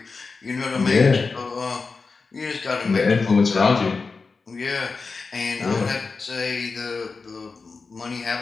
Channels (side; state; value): right; quieter; 4.4 dB